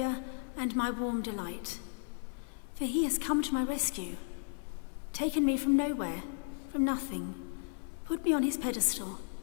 and my warm delight. For he has come to my rescue, taken me from nowhere, from nothing, put me on his pedestal,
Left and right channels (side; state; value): right; silent; 55 dB below the other